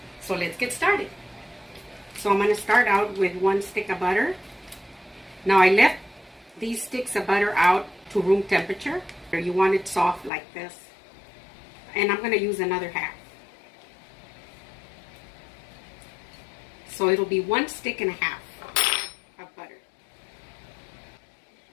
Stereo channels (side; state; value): right; drops out; at 10.3 s